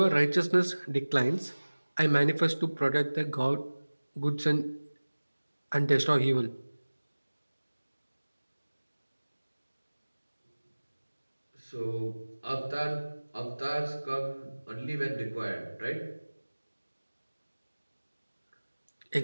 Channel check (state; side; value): inverted; both; correlation -1.00